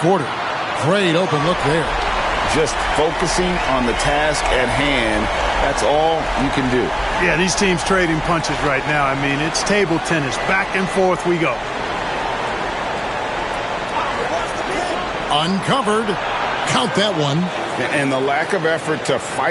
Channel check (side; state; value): both; identical; correlation 1.00